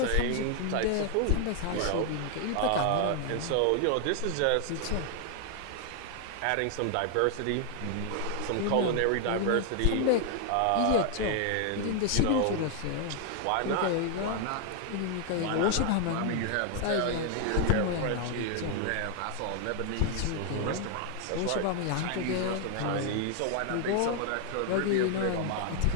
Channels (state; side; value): different; both; correlation 0.00